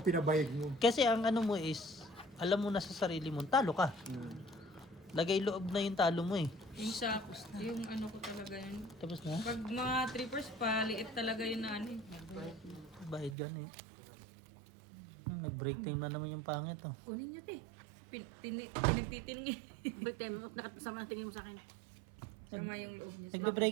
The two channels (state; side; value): drops out; left; at 13.4 s